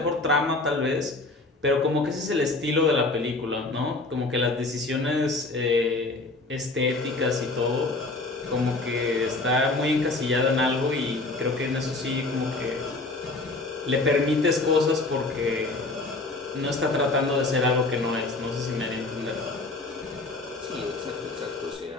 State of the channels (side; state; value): right; quieter; 3.2 dB